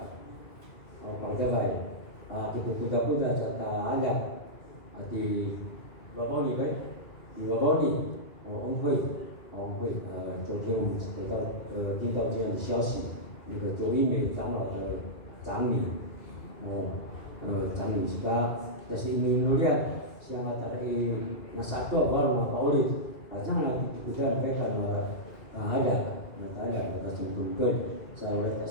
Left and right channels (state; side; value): late; right; 2.4 ms